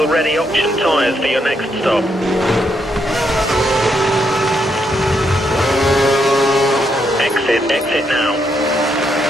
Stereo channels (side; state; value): both; normal; correlation 0.78